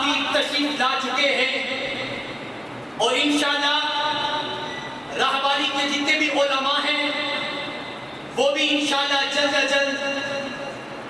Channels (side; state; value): both; identical; correlation 1.00